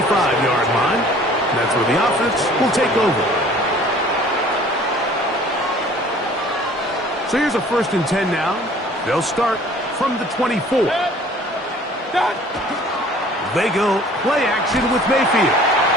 line. And that's where the offense will take over. So here's a 1st and 10 now. They'll start from the 24. They go play action with Mayfield.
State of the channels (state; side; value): normal; both; correlation 0.51